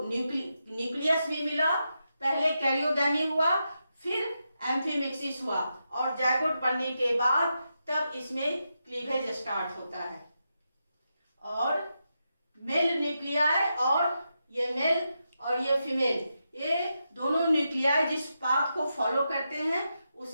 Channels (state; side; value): inverted; both; correlation -0.86